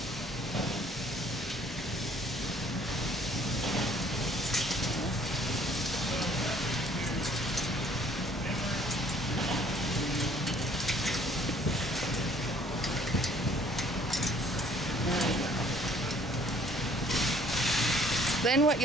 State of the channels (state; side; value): normal; both; correlation 0.58